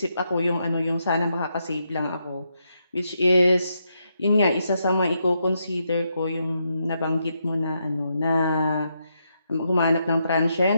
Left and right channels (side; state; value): both; inverted; correlation -0.81